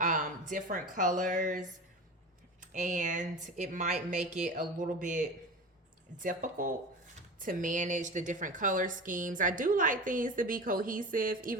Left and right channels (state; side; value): normal; both; correlation 0.31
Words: different colors, and it might make it a little bit difficult to manage the different color schemes. I do like things to be cohesive,